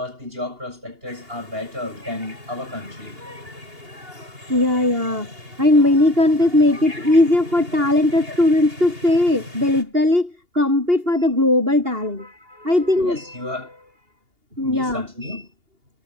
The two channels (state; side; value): late; left; 2.8 ms